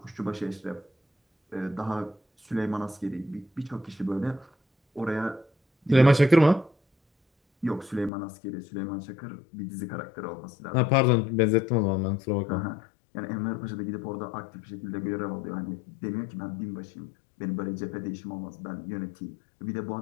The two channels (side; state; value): right; drops out; at 8.1 s